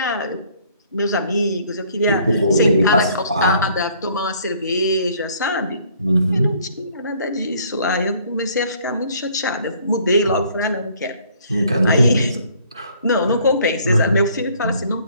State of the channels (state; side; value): inverted; both; correlation -0.60